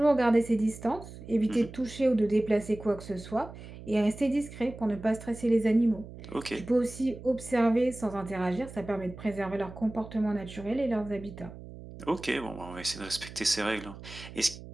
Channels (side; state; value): right; noise; hum, 14 dB below the sound